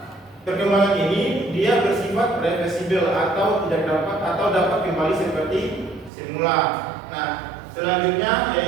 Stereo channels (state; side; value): drops out; left; at 6.1 s